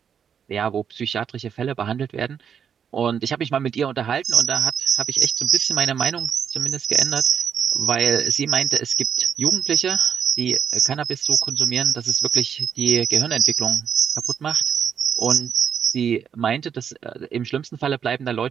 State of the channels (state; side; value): quieter; left; 7.8 dB